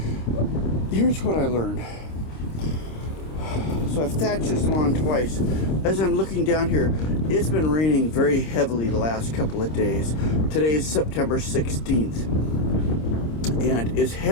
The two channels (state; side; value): late; right; 26 ms